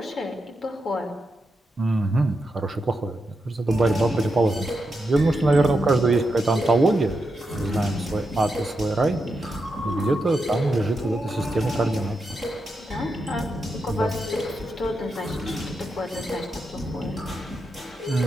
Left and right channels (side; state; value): both; normal; correlation 0.86